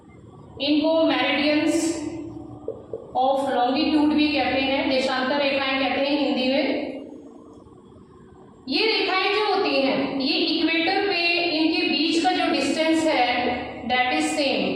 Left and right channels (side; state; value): both; identical; correlation 1.00